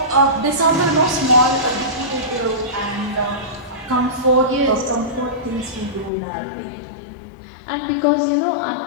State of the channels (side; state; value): right; drops out; at 6.1 s